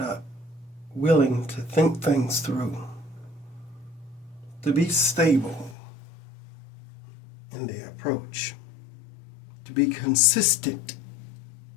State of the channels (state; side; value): drops out; right; at 5.8 s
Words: are willing to think things through, to be stable in their approach, to be consistent